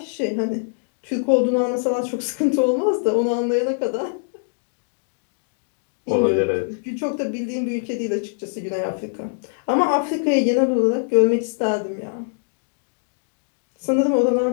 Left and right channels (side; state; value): right; silent; digital silence